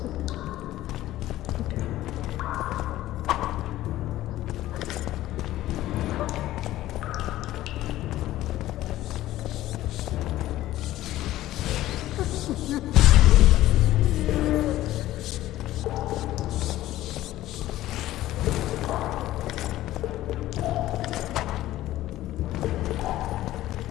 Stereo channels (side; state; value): right; quieter; 14.9 dB